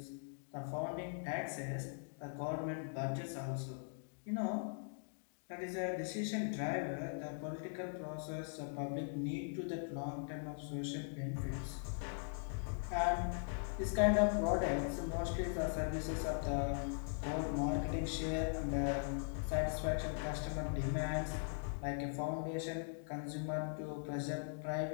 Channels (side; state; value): right; silent; digital silence